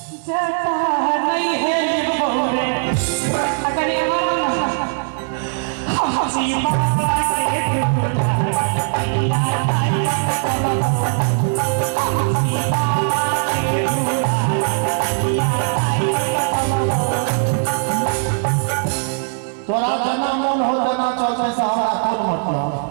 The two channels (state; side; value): silent; left; 66 dB below the other